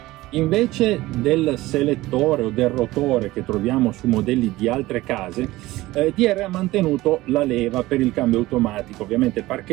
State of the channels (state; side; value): quieter; left; 18.2 dB